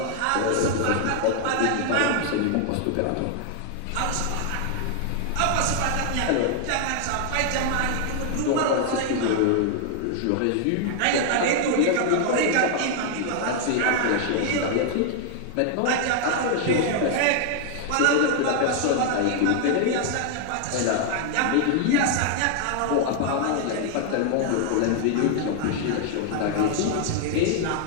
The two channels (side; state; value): both; different; correlation 0.00